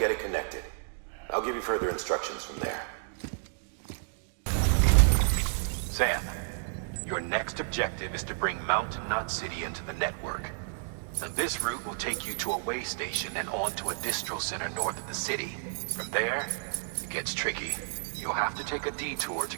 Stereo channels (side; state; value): left; silent; digital silence